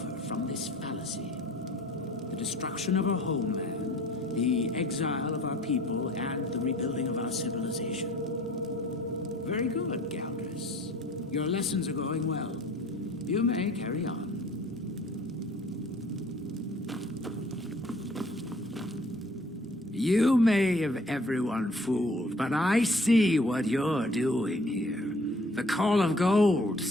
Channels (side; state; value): both; normal; correlation 0.53